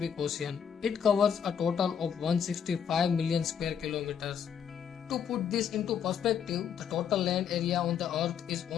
Ocean. It covers a total of 165 million square kilometers. To put this into perspective, the total land area on the earth is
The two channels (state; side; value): quieter; right; 7.9 dB